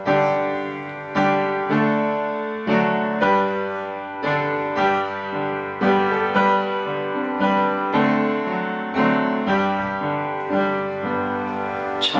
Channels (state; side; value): identical; both; correlation 1.00